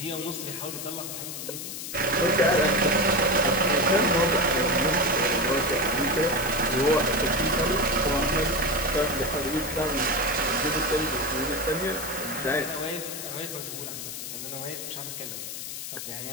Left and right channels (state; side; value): noise; left; hiss, 7 dB below the sound